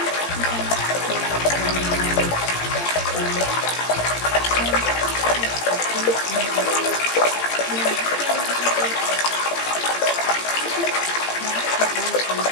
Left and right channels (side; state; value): right; late; 17 ms